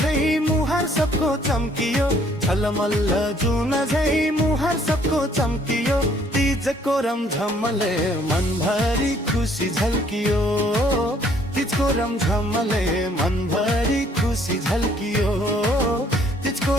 मुहार सबको चम्कियो, छलमल्ल जुन झै मुहार सबको चम्कियो, तीजको रमझमले मनभरि खुसी झल्कियो, तीजको रमझमले मनभरि खुसी झल्कियो, तीजको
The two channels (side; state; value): both; normal; correlation 0.62